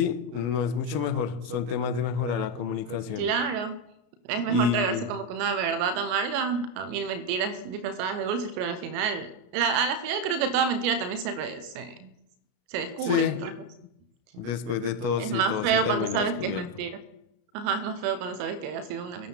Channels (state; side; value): late; left; 33 ms